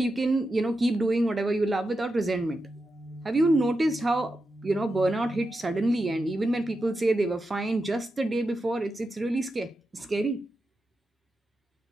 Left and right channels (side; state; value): both; normal; correlation 0.89